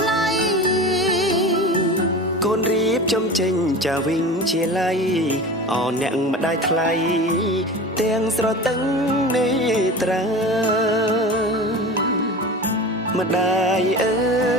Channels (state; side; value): normal; both; correlation 0.33